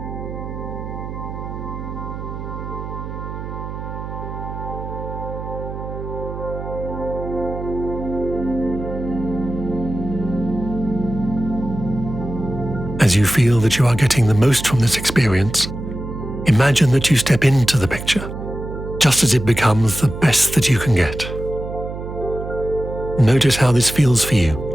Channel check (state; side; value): noise; right; hum, 8 dB below the sound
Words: As you feel that you are getting the most from this experience, imagine that you step into the picture, just as it becomes the best that you can get. Notice how this feels for